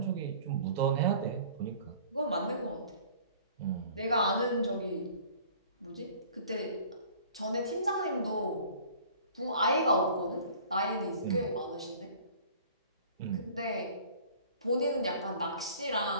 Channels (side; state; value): both; inverted; correlation -0.49